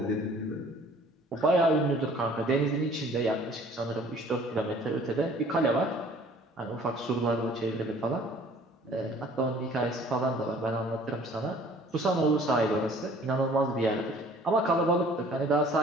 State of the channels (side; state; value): both; normal; correlation 0.53